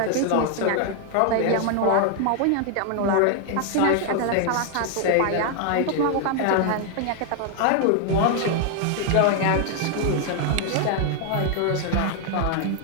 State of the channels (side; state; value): both; different; correlation 0.00